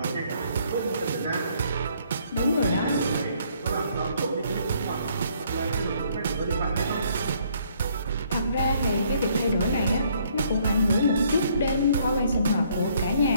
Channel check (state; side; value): inverted; both; correlation -0.66